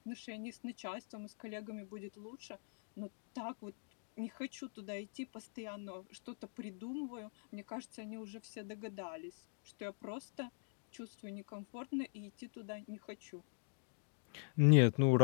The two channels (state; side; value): silent; right; digital silence